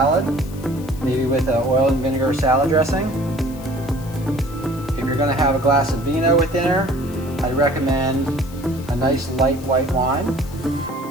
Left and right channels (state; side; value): noise; left; hiss, 20 dB below the sound